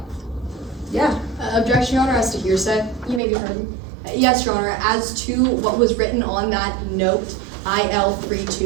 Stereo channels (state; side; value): drops out; left; at 3.2 s